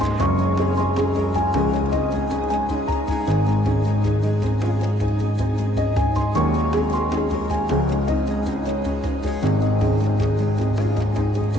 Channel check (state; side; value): normal; both; correlation 0.67